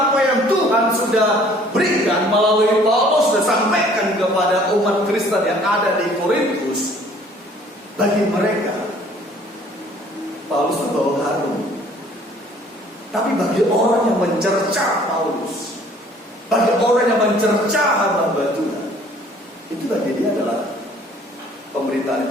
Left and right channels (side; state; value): both; normal; correlation 0.56